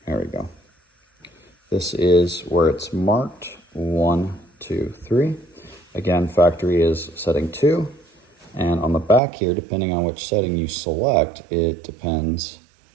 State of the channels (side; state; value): left; drops out; at 9.2 s